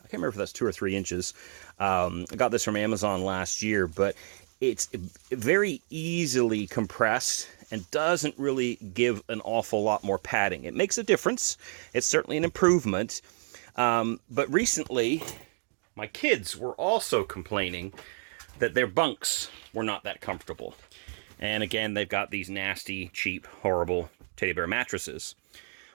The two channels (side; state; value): left; silent; digital silence